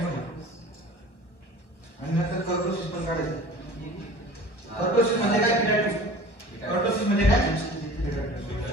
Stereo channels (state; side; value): late; right; 1.3 ms